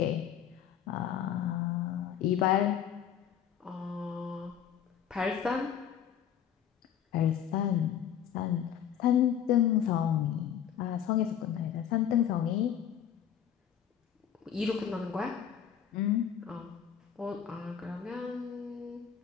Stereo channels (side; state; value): right; quieter; 9.3 dB